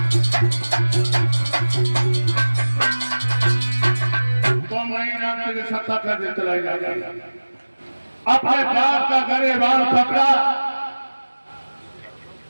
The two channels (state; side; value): inverted; both; correlation -1.00